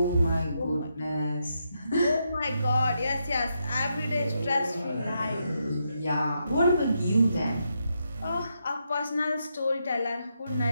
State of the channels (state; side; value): inverted; both; correlation -0.81